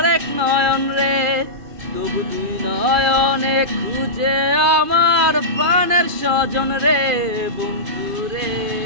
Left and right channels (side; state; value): left; late; 2.4 ms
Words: নয়ন রে তবু দুই নয়নে খুঁজে আমার প্রাণের স্বজন রে বন্ধুরে